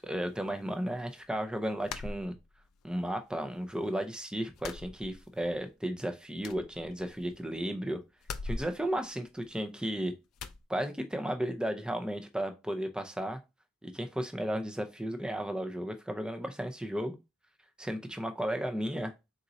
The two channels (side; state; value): both; normal; correlation 0.91